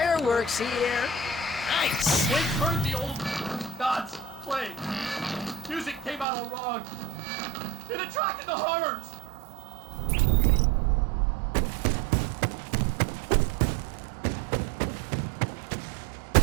here. Nice! Wait, heard the old gods play. Music came out all wrong. It attracted the horrors.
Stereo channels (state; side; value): drops out; left; at 6.2 s